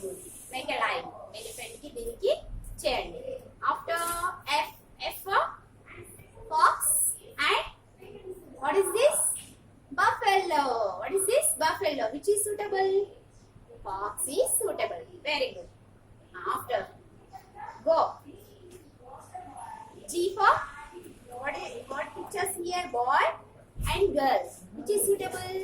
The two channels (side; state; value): both; identical; correlation 1.00